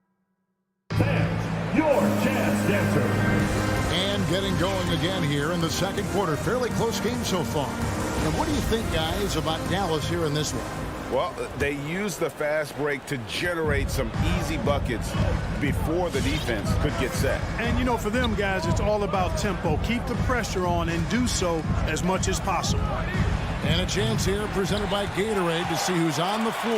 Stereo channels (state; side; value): identical; both; correlation 1.00